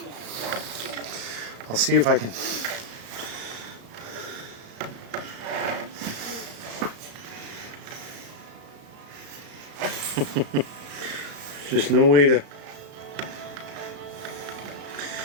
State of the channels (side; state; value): left; late; 34 ms